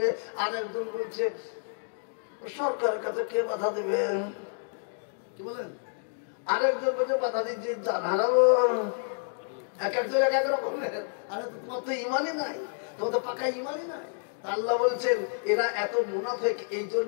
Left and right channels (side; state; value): right; silent; digital silence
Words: আর একজন বলছে সরকারের কাছে কে বাধা দেবে, কি বলেন? আরেকজন বলছে বাধা দিচ্ছি হারাবো। এক একজন এক এক রকমের। আরে তোমার তো ইমানই নাই, তোমার তো পাকা ইমানই নাই। আল্লাহ বলছেন এরা এত মুনাফিক, এই